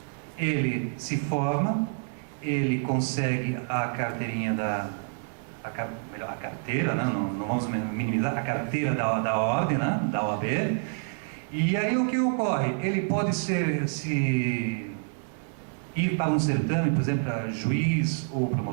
Ele se forma, ele consegue a carteirinha a carteira, né? Não vamos minimizar, a carteira da ordem, né? Da OAB. E aí o que ocorre? Ele pode ir para um certame, por exemplo, para juiz ou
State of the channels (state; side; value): silent; left; 60 dB below the other